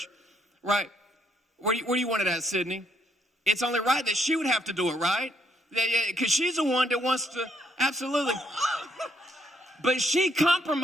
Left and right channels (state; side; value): normal; both; correlation 0.71